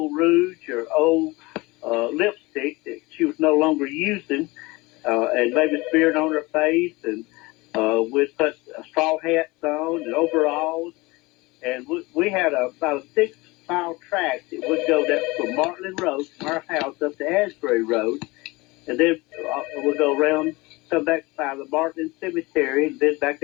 or old lipstick that she was no longer using, and maybe smear it on her face, and we'd put straw hats on and overalls, and we had about a 6-mile track that would go down from Martland Road, from our house up to Asbury Road, and then we'll go around, come back by the Martland Cemetery, and then back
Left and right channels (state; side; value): quieter; right; 22.9 dB